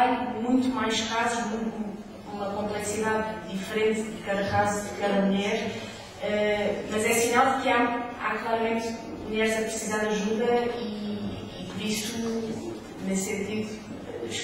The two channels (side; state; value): both; identical; correlation 1.00